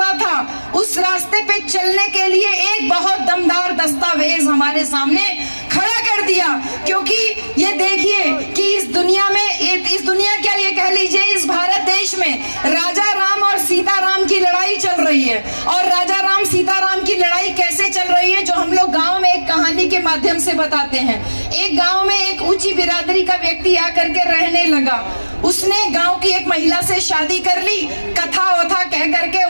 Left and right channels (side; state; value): both; inverted; correlation -1.00